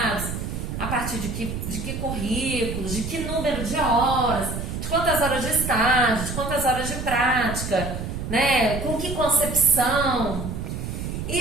a partir de que currículos, de que número de horas, de quantas horas de estágio, de quantas horas de prática, né? Com que concepção.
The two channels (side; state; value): right; noise; rumble, 5 dB below the sound